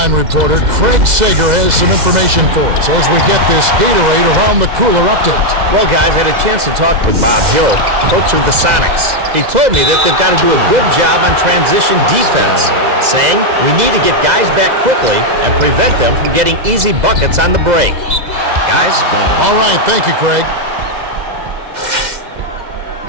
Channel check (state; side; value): late; left; 2.0 ms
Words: reporter, Craig Sager, has some information for us as we get this Gatorade Around the Cooler update. Well, guys, I had a chance to talk with Bob Hill, coach of the Sonics. He told me that they've got to do a good job on transition defense, saying we need to get guys back quickly and prevent them from getting easy buckets on the break. Guys? All right, thank you, Craig.